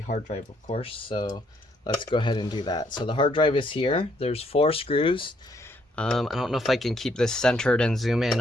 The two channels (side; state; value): both; normal; correlation 0.69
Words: hard drive, of course, so let's go ahead and do that. So the hard drive is here. There's 4 screws. I don't know if I can keep this centered and zoom in.